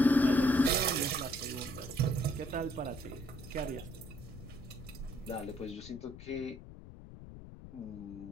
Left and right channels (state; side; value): noise; left; rumble, 15 dB below the sound